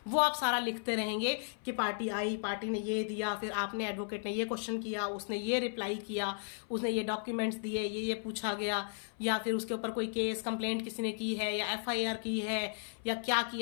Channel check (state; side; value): silent; right; 55 dB below the other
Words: वो आप सारा लिखते रहेंगे कि पार्टी आई, पार्टी ने ये दिया, फिर आपने, एडवोकेट ने ये क्वेश्चन किया, उसने ये रिप्लाई किया, उसने ये डॉक्यूमेंट्स दिए, ये पूछा गया, या फिर उसके ऊपर कोई केस कंप्लेंट किसी ने की है या FIR की है या क्या